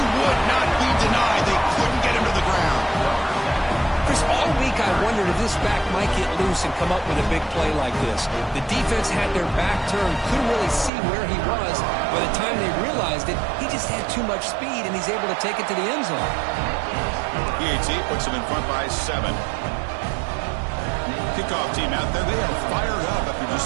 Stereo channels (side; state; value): left; drops out; at 10.9 s